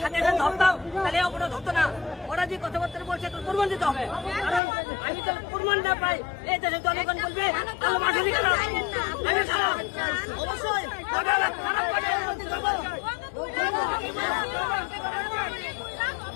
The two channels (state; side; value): drops out; right; at 4.6 s